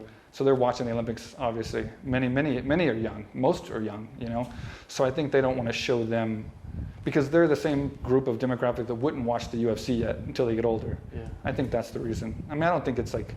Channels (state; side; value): identical; both; correlation 1.00